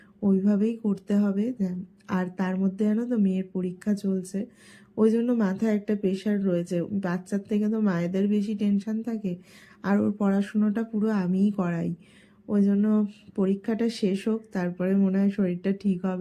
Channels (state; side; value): identical; both; correlation 1.00